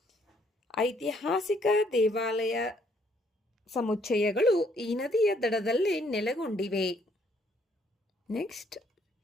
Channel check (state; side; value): normal; both; correlation 0.67